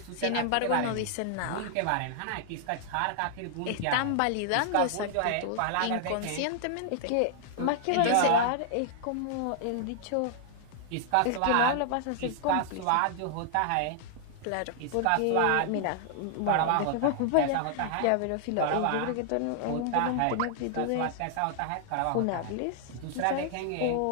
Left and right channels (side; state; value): both; different; correlation -0.01